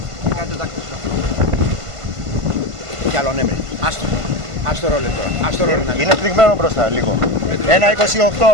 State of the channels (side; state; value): left; late; 1.5 ms